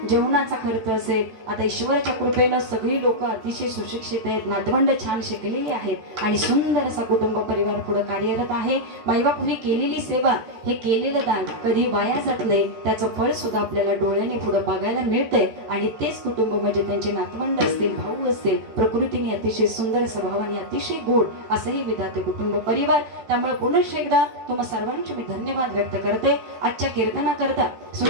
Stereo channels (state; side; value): late; left; 14 ms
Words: जेवणाचा खर्च असेल. आता ईश्वराच्या कृपेनं सगळी लोक अतिशय सुशिक्षित आहेत, नातवंड छान शिकलेली आहेत आणि सुंदर असा कुटुंब परिवार पुढे कार्यरत आहे. मायबापूंनी केलेली सेवा, हे केलेलं दान कधी वाया जात नाही. त्याचं फळ सुद्धा आपल्याला डोळ्याने पुढे बघायला मिळतंय. आणि तेच कुटुंब म्हणजे त्यांचे नातवंड असतील, भाऊ असतील, प्रकृतीने अतिशय सुंदर स्वभावाने अतिशय गोड असंही विधाते कुटुंब परिवार. त्यामुळे पुन्हा एकदा तुम्हा सर्वांचे मी धन्यवाद व्यक्त करते. आजच्या कीर्तनाकरता,